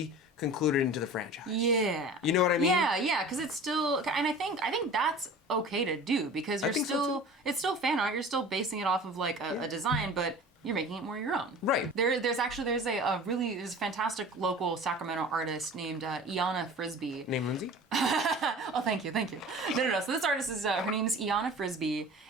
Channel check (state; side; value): normal; both; correlation 0.40